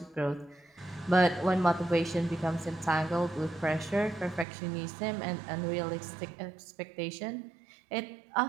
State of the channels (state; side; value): drops out; left; at 4.5 s